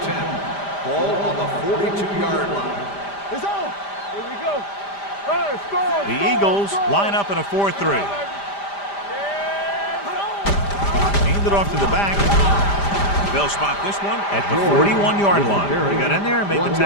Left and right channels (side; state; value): right; late; 5.0 ms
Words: 10. Ball on the 42-yard line. It's on. Here we go. All right, score. The Eagles line up in a 4-3. Hand it off to the back. They'll spot this one at the 41-yard line. They got in there and made the